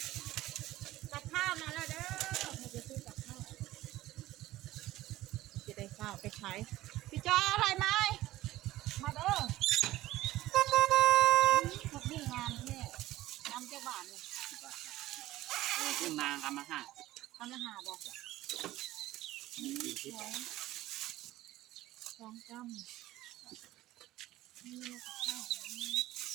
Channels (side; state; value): left; quieter; 16.1 dB